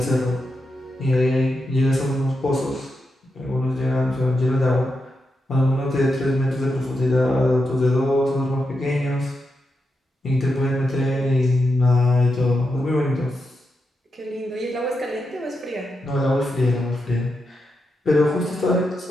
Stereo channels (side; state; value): both; normal; correlation 0.86